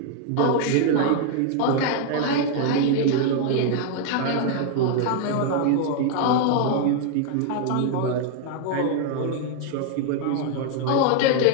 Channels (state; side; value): different; both; correlation 0.00